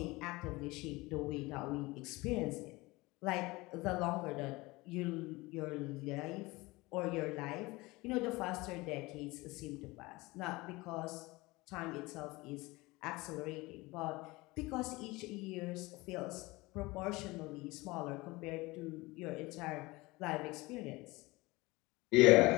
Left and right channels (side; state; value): right; quieter; 22.1 dB